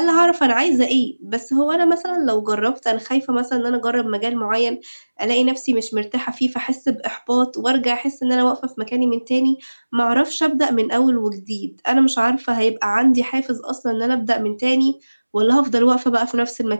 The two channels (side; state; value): both; inverted; correlation -1.00